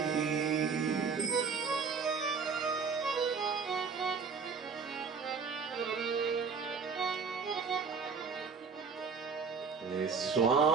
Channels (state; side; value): quieter; left; 5.5 dB